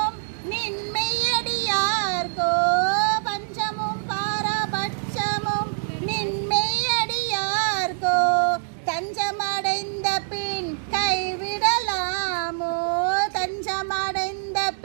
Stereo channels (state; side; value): silent; left; digital silence